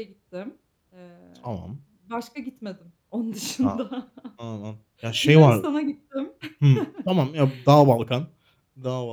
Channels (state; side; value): identical; both; correlation 1.00